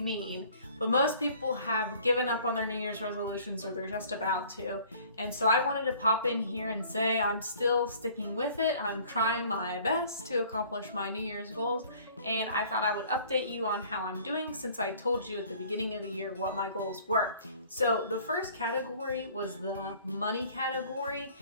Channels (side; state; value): both; inverted; correlation -0.53